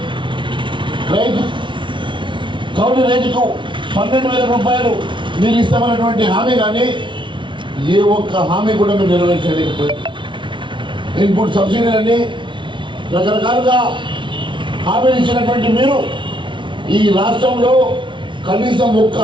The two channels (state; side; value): late; left; 0.24 ms